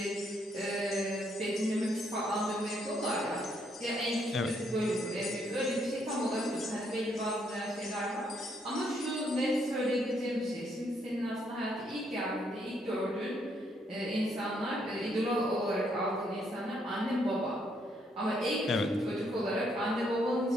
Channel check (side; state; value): both; normal; correlation 0.72